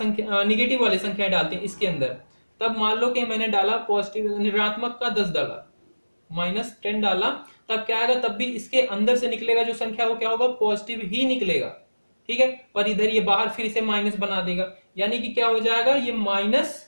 निगेटिव वाले संख्या डालते हैं इसके अंदर। तब मान लो कि मैंने डाला पॉजिटिव, ऋणात्मक का 10 डाला, -10 डाला, तब क्या आएगा, तब भी इसके अंदर से निकलेगा जो संख्या वो क्या होगा, पॉजिटिव ही निकलेगा। ठीक है, पर इधर ये बाहर फिर इसे माइनस बना देगा, यानी कि क्या हो जाएगा, ये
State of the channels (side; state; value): both; inverted; correlation -1.00